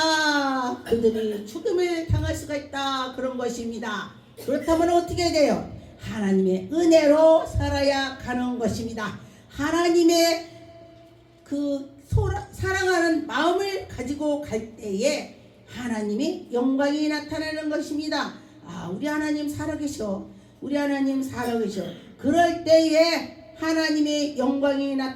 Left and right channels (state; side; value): identical; both; correlation 1.00